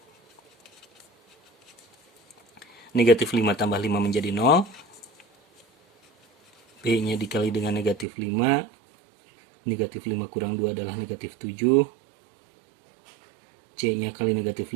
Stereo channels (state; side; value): drops out; left; at 8.1 s